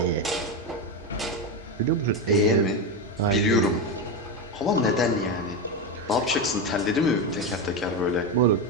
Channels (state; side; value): normal; both; correlation 0.13